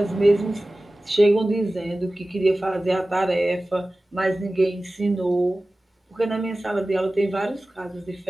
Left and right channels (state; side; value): normal; both; correlation 0.97